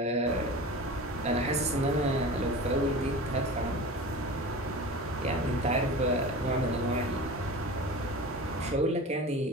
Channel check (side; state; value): both; normal; correlation 0.33